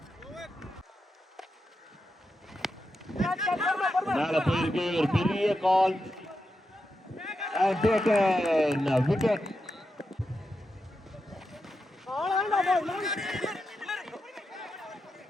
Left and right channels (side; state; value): both; normal; correlation 0.87